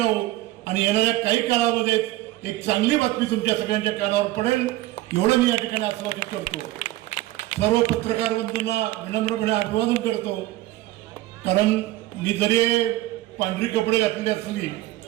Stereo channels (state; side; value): quieter; left; 16.7 dB